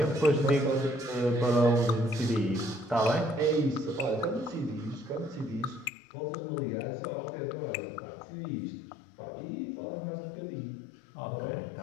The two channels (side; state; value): right; drops out; at 5.9 s